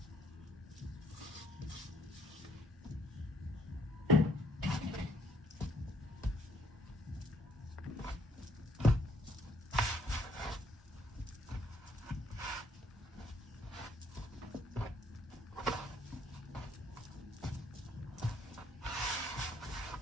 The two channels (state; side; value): normal; both; correlation 0.66